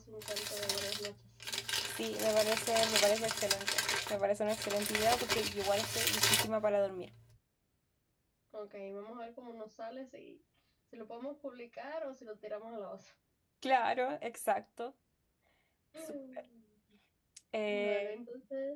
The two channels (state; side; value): identical; both; correlation 1.00